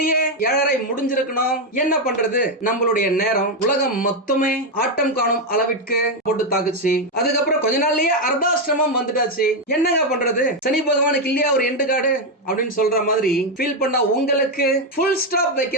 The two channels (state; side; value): normal; both; correlation 0.05